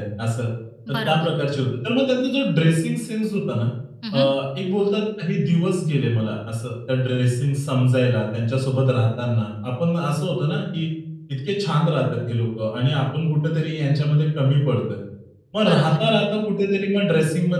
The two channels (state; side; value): identical; both; correlation 1.00